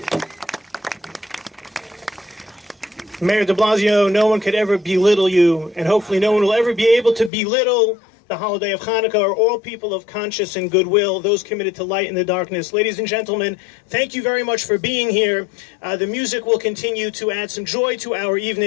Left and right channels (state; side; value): drops out; right; at 7.3 s